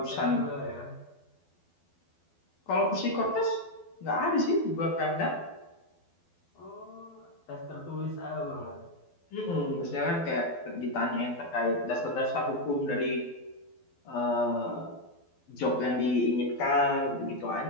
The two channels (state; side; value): late; right; 12 ms